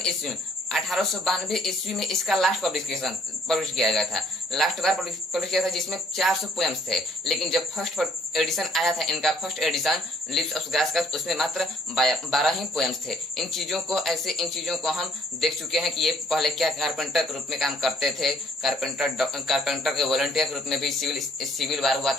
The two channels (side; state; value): both; normal; correlation 0.61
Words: ईस्वी में 1892 ईस्वी में इसका लास्ट पब्लिश किया गया था, लास्ट बार पब्लिश किया था, जिसमें 400 पोएम्स थे। लेकिन जब फर्स्ट एडिशन आया था इनका, first edition lips of grass का, उसमें मात्र 12 ही पोएम्स थे। इन चीजों को हम देख चुके हैं कि ये पहले क्या कारपेंटर के रूप में काम करते थे, कारपेंटर के वॉलंटियर के रूप में भी सिविल वार हुआ